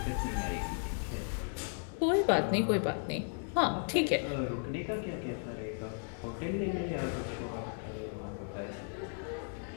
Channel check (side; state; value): right; silent; 54 dB below the other